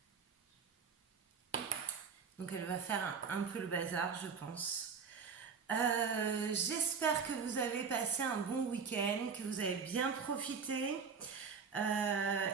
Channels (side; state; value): left; quieter; 5.9 dB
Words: Donc elle va faire un peu le bazar, je pense. J'espère que vous avez passé un bon week-end, que vous avez bien profité.